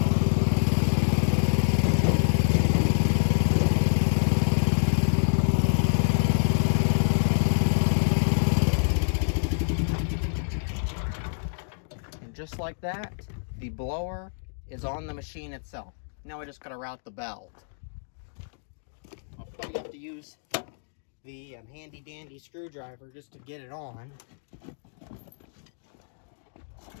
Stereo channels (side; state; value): right; silent; digital silence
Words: Just like that, the blower is on the machine itself. Now I just gotta route the belt. I'll probably have to use the handy dandy screwdriver just to get it on.